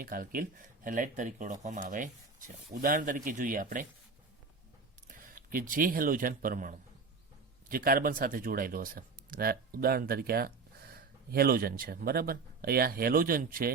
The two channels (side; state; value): left; quieter; 4.5 dB